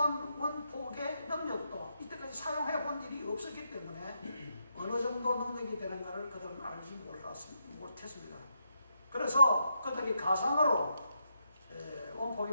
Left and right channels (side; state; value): both; inverted; correlation -0.80